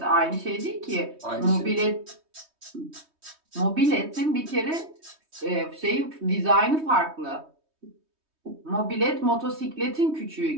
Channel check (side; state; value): left; late; 3.2 ms